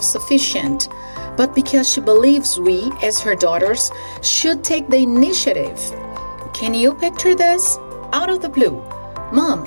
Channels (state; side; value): inverted; both; correlation -1.00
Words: but because she believes we, as her daughters, should take the initiative. Can you picture this? Out of the blue. Mom,